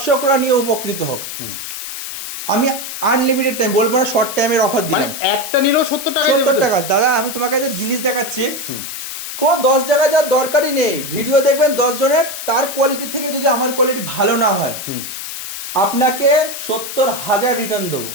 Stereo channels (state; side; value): noise; left; hiss, 8 dB below the sound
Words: নিয়ে উপকৃত হোক। আমি আনলিমিটেড টাইম বলবো না, শর্ট টাইমের অফার দিলাম, একটা নিলেও 70 টাকা। 70 টাকা। দাদা, আমি তোমাকে যে জিনিস দেখাচ্ছি, কোনো 10 জায়গায় যাওয়ার দরকারই নেই। ভিডিও দেখবেন 10 জনের, তার কোয়ালিটি থেকে যদি আমার কোয়ালিটি ভালো না হয়, আপনাকে 70,000 রিটার্ন দেবো।